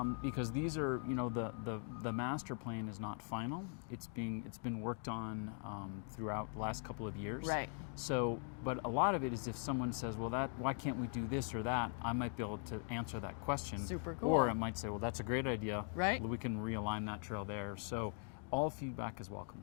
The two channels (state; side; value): silent; right; 50 dB below the other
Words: Because these are, the master plan is not final. It's been worked on throughout the last couple of years. Right. So, but a lot of it is if someone says, well, why can't we do this or that? I might be able to answer that question. Super cool. Or I might say, well, that's a great idea. Right. We can realign that trail there. So, all feedback is welcome.